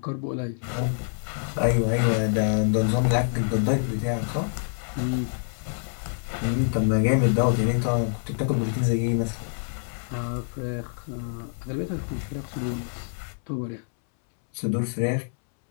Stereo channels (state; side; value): silent; right; 61 dB below the other